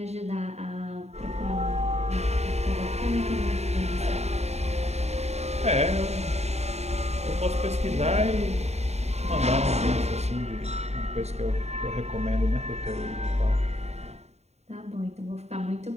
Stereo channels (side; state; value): left; late; 0.32 ms